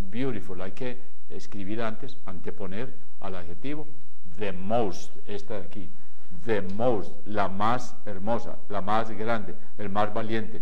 beautiful. Hay que escribir antes, anteponer al adjetivo. The most, esta de aquí. The most, la más hermosa, la más grande, el más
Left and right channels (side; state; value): both; identical; correlation 1.00